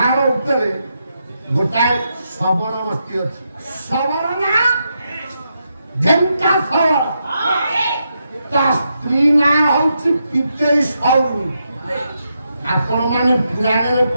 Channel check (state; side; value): inverted; both; correlation -0.83